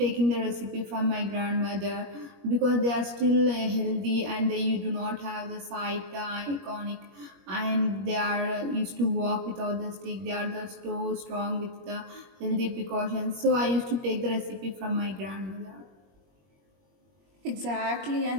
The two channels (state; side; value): late; left; 21 ms